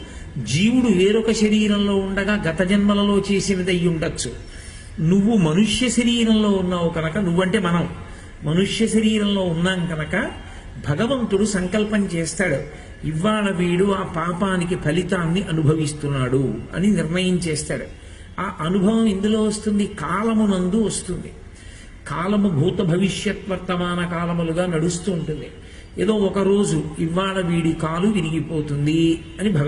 జీవుడు వేరొక శరీరంలో ఉండగా గత జన్మలలో చేసినది అయి ఉండొచ్చు. నువ్వు మనుష్య శరీరంలో ఉన్నావు కనుక, నువ్వంటే మనం మనుష్య శరీరంలో ఉన్నాం కనుక భగవంతుడు సంకల్పం చేస్తాడు, ఇవాళ వీడు ఆ పాపానికి ఫలితాన్ని అనుభవిస్తున్నాడు అని నిర్ణయం చేస్తాడు. ఆ అనుభవం ఎందులో వస్తుంది? కాలమునందు వస్తుంది. కాలము భూత భవిష్యత్ వర్తమాన కాలములుగా నడుస్తూ ఉంటుంది. ఏదో ఒక రోజు ఇవాళ వీడి కాలు విరిగిపోతుంది అని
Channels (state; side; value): identical; both; correlation 1.00